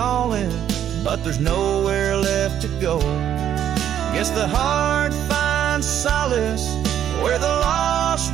but there's nowhere left to go. Guess the heart finds solace where the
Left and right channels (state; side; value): quieter; left; 10.2 dB